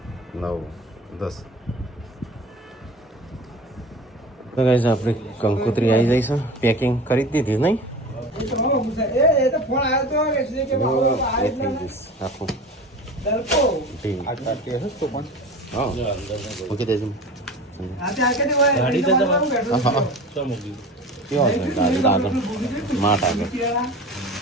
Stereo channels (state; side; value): normal; both; correlation 0.36